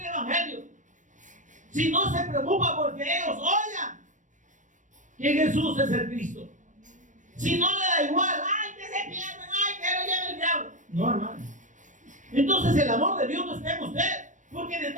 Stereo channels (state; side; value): late; left; 0.37 ms